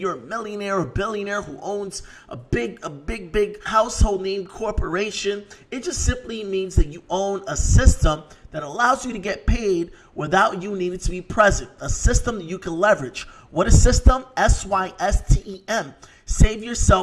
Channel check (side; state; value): both; identical; correlation 1.00